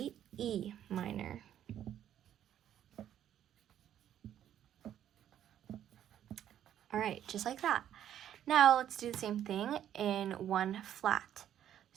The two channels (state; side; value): quieter; left; 10.7 dB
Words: E minor. All right, just like that. Now let's do the same thing in 1 flat.